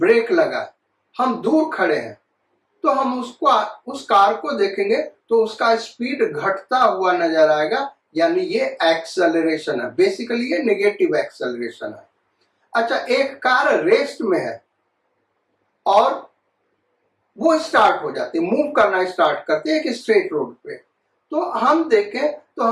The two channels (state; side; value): identical; both; correlation 1.00